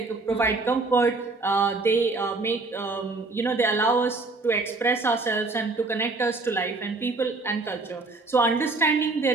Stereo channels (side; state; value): left; quieter; 3.5 dB